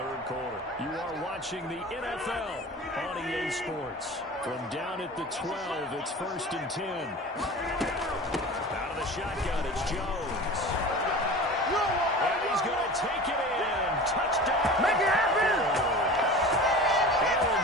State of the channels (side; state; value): both; normal; correlation 0.36